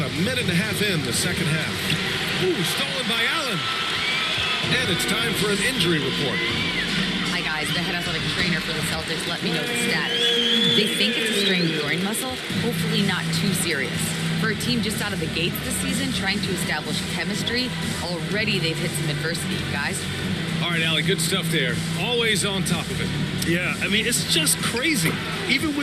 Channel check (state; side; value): identical; both; correlation 1.00